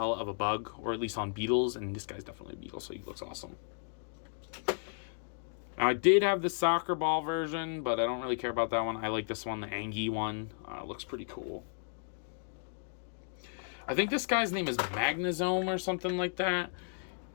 of a bug, or at least on beetles, and this guy's definitely a beetle, so he looks awesome. Now, I did have the soccer ball version, but I don't really care about that one. I like this one, the Angie one. Looks pretty cool. I think this guy's name is Magnazome or something like that.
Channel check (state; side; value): silent; right; digital silence